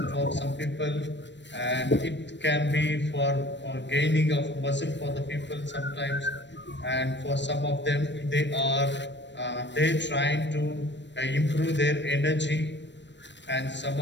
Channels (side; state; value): right; late; 0.52 ms